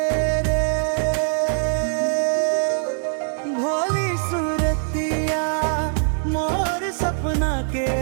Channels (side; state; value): left; silent; digital silence